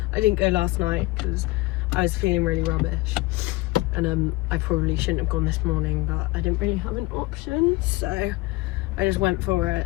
I didn't go last night because I was feeling really rubbish, and I probably shouldn't have gone this morning, but I didn't really have an option, so I just went for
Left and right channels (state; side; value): quieter; right; 20.4 dB